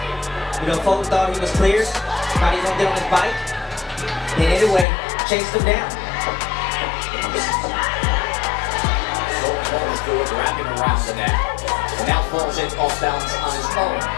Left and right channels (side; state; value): right; drops out; at 4.9 s